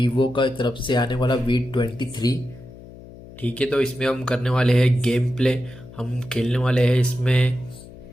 का तरफ से आने वाला V23। ठीक है, तो इसमें हम करने वाले हैं गेम प्ले। हम खेलने वाले हैं इसमें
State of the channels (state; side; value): noise; left; hum, 18 dB below the sound